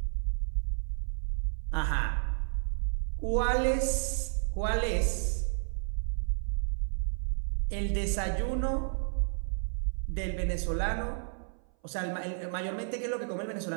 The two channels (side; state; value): left; silent; 57 dB below the other